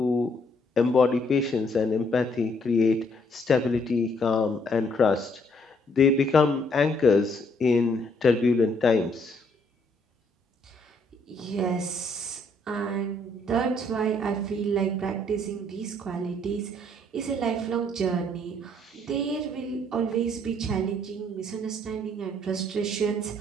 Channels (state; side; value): normal; both; correlation 0.68